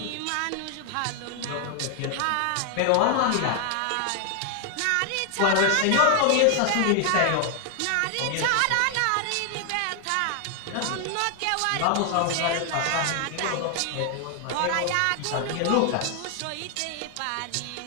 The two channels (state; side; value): different; both; correlation 0.00